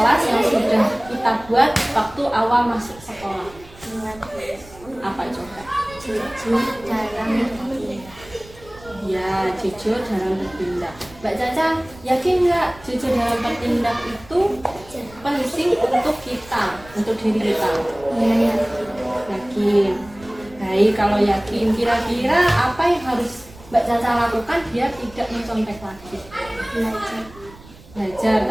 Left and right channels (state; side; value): noise; right; rumble, 22 dB below the sound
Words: yang sudah kita buat waktu awal masuk sekolah? Ingat Bu. Apa coba? Jujur dalam bertindak. Ya, jujur dalam bertindak. Mbak Caca yakin nggak jujur dalam bertindak itu penting untuk kita, untuk diri kita? Iya ya. Yakin. Baik, kalau yakin, kira-kira apa yang harus Mbak Caca lakukan biar tidak mencontek lagi? Belajar. Belajar